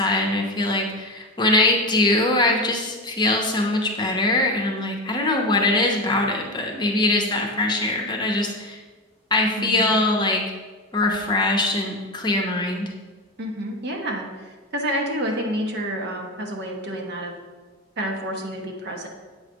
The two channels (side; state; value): both; normal; correlation 0.19